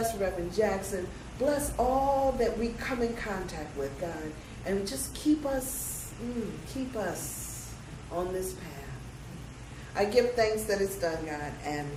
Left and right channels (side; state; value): both; identical; correlation 1.00